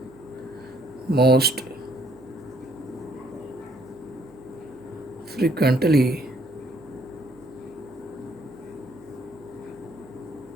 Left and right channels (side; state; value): right; noise; hum, 25 dB below the sound